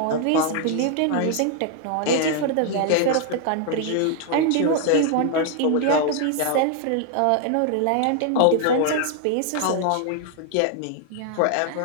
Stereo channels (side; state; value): both; different; correlation 0.00